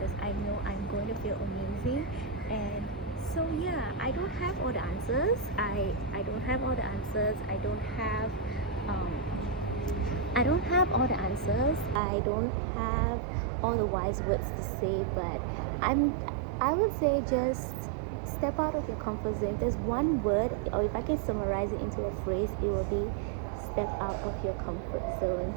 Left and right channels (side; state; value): left; drops out; at 12.0 s